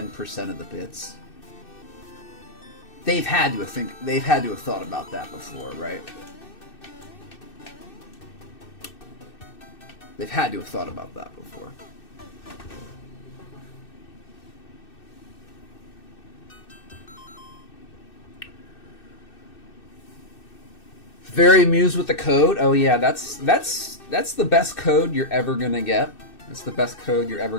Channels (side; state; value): right; late; 2.6 ms